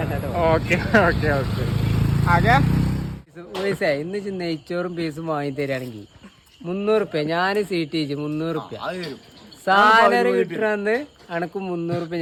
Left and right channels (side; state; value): both; identical; correlation 1.00